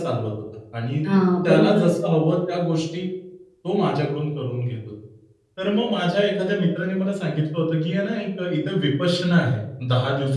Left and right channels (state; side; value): identical; both; correlation 1.00